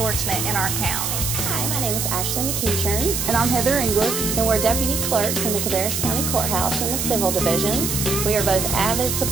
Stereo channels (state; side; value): noise; right; hiss, 1 dB below the sound